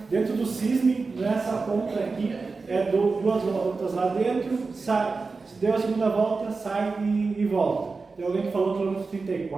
dentro do CISM, nessa ponta aqui, 2 voltas lá dentro, sai, deu a segunda volta, sai e volta. Tem alguém que falou quilômetro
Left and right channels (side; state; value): left; quieter; 4.2 dB